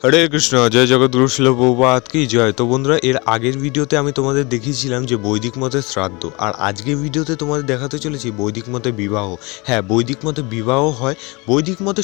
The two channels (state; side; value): quieter; right; 26.7 dB